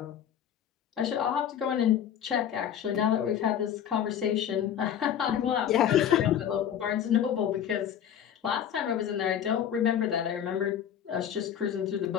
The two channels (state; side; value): quieter; right; 9.4 dB